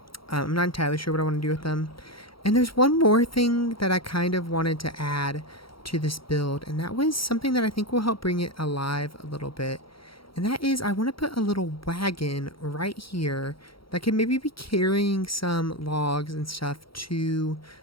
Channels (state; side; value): late; right; 0.74 ms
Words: I'm not entirely sure what I want to do with them. And there's one more thing that I kind of wanted to add to this build, and that was something that I think will help bring it alive a little bit. And that is, I want to put a little wagon right here that can maybe be carrying some logs and stuff to